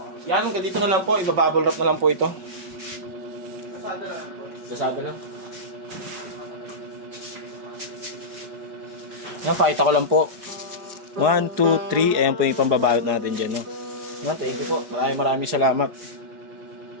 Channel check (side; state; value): left; late; 4.7 ms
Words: Yan, hanggang dito na lang po. Ibabubble wrap na lang po ito. Kasada lang. Kasada lang. Yan, pakita ko lang po. 1, 2, 3. Ayan po yung pambabalot natin dyan, no? Yan, thank you po. Maraming salamat.